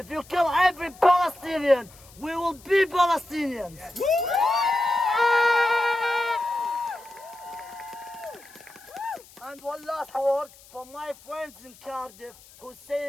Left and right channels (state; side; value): noise; left; hiss, 23 dB below the sound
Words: you kill every Palestinian, we will be Palestinians. And one last word for my friends in Cardiff who's